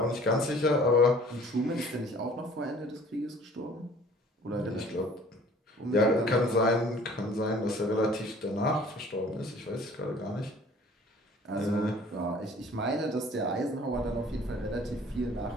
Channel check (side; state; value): both; normal; correlation 0.51